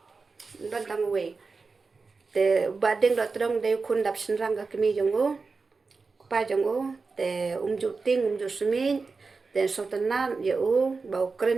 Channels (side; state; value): left; quieter; 4.3 dB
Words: te bading do trong de kun dap sinrang ka kemi jongo pa jongo te juting ju sumin te sotanan ye bau